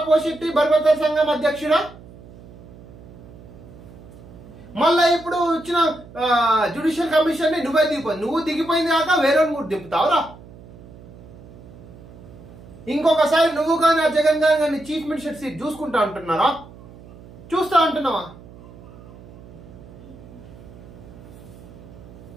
పోషెట్టి బర్బతల సంఘం అధ్యక్షుడా, మళ్ళా ఇప్పుడు వచ్చిన జ్యుడిషియల్ కమిషన్ ని నువ్వే నువ్వు దిగిపోయింది కాక వేరే కూడా దింపుతావురా. ఇంకొకసారి నువ్వు కానీ ఆ జగన్ గారిని చీఫ్ మినిస్టర్ సీట్ చూసుకుంటా అంటున్నారా? చూస్తా అంటున్నావా?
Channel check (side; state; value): right; noise; hum, 19 dB below the sound